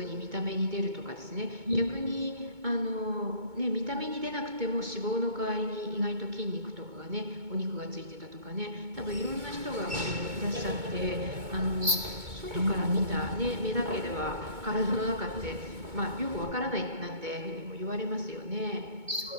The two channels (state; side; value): late; left; 2.2 ms